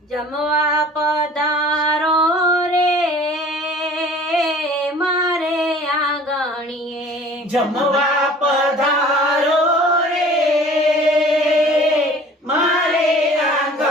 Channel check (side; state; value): both; normal; correlation 0.47